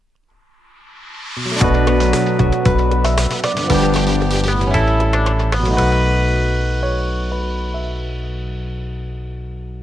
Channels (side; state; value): both; normal; correlation 0.88